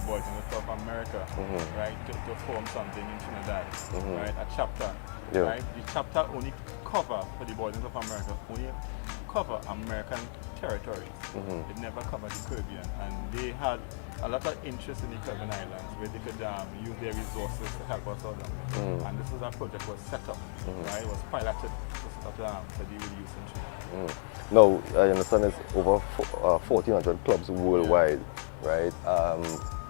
Boys and Girls Club of America, right, to form something in Trinidad, right? A chapter, right? The chapter only cover for the Boys and Girls Club of America only cover American territories. It never covered the Caribbean, and they had a lot of interest in the Caribbean islands where they could use their resources to help us out down there. And this is a project was set up, right? It was piloted to set up to deal with youth in Trinidad. Now, I understand it's over 1,400 clubs worldwide, right?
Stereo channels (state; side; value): silent; right; 56 dB below the other